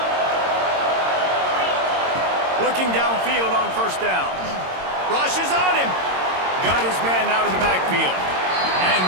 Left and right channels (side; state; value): left; late; 22 ms